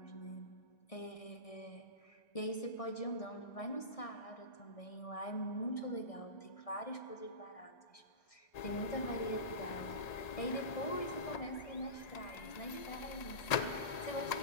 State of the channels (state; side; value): late; right; 1.8 ms